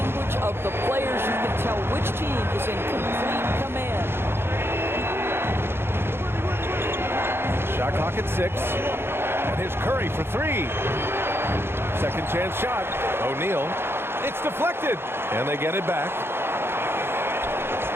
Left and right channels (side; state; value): left; late; 0.11 ms